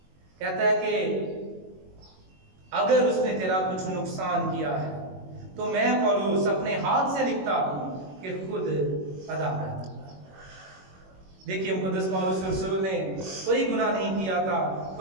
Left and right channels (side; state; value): left; late; 21 ms